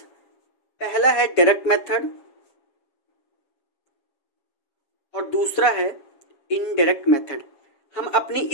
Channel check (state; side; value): late; right; 7.3 ms